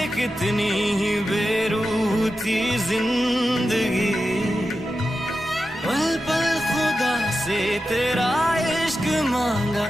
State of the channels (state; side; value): normal; both; correlation 0.91